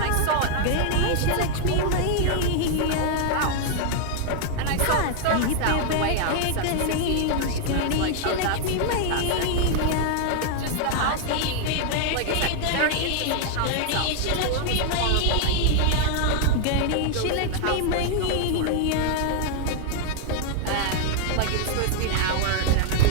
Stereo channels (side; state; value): both; different; correlation 0.00